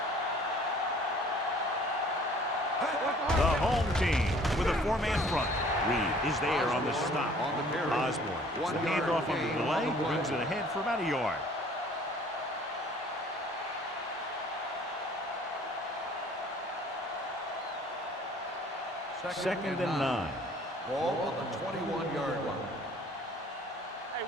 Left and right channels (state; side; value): normal; both; correlation 0.54